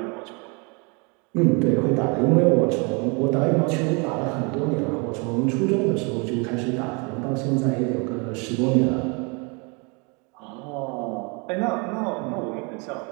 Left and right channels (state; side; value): quieter; left; 31.9 dB